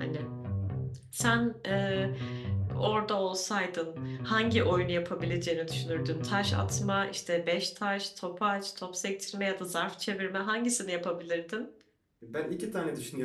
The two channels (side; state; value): both; identical; correlation 1.00